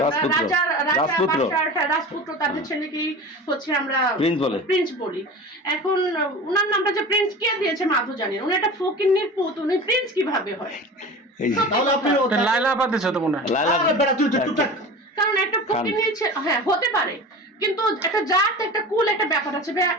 আমরা রাজপুত্র তাদের ছেলেকেই হচ্ছে আমরা প্রিন্স বলি। এখন উনার নামটা যে প্রিন্স কে দিয়েছে মাধু জানেন, উনি একটা ফকিন্নির পুত, উনি প্রিন্স কিভাবে হয়? তাহলে আপনি লাইলা আপা দিছো তো মনে হয়। লাইলা বেটা তুই চুপচাপ। কারণ একটা ফকিন্নি হ্যাঁ হতে পারে, কিন্তু একটা জাত একটা কুল একটা ব্যাপার আছে।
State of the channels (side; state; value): both; normal; correlation 0.34